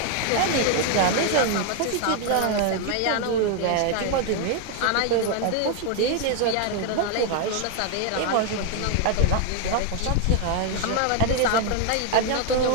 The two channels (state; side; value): different; both; correlation 0.01